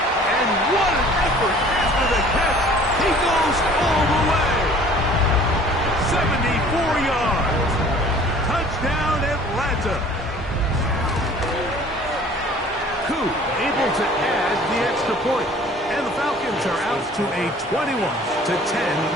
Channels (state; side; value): normal; both; correlation 0.50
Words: And what an effort after the catch. He goes all the way. 74 yards. Touchdown, Atlanta. Koo able to add the extra point. And the Falcons are out to a 21-10